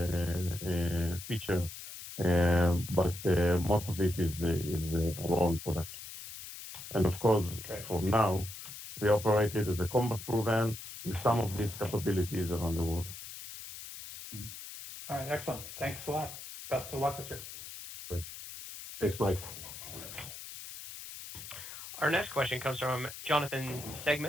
features, but most of it is our own product. And of course, for now, we operated as a combat proven with some of these capabilities around the world. All right, excellent. Thanks a lot. Best of luck this year. Great. Thanks, Mike. Our next question comes from Jonathan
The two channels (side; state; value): left; noise; hiss, 12 dB below the sound